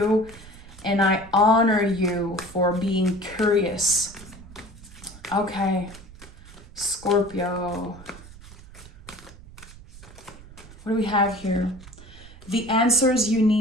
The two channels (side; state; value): right; noise; rumble, 19 dB below the sound